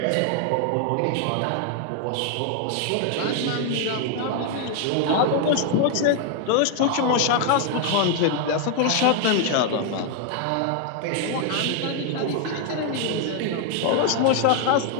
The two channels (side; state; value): both; different; correlation 0.00